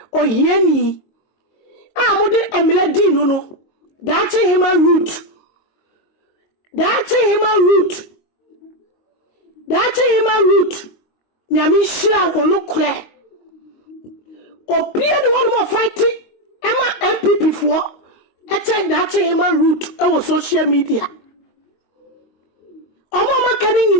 Oyeni mudi emile di no Dachi hima root Nyami shira wono kle Opia the one more fighting Emma MPP for Eche dachi hima root Ewo social media Omo makani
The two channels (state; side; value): late; right; 22 ms